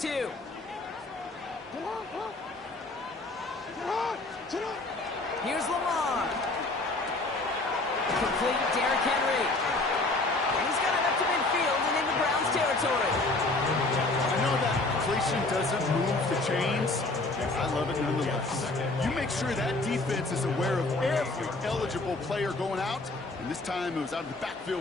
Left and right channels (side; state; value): right; quieter; 3.1 dB